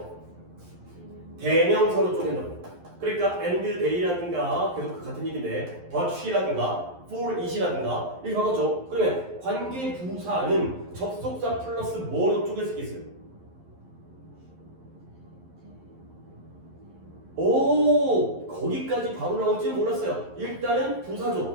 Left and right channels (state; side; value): late; left; 11 ms